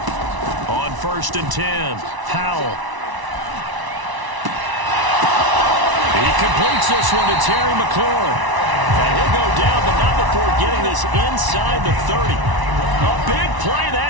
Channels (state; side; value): late; left; 1.0 ms